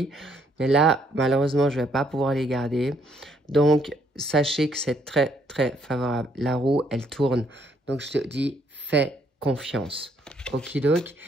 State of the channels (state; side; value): normal; both; correlation 0.69